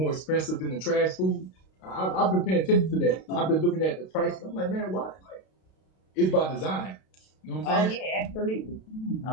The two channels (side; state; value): right; late; 32 ms